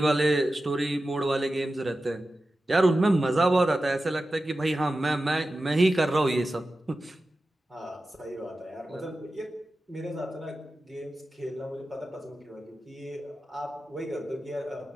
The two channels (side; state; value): both; normal; correlation 0.93